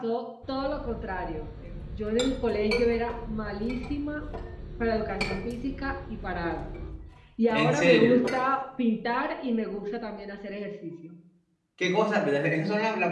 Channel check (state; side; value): identical; both; correlation 1.00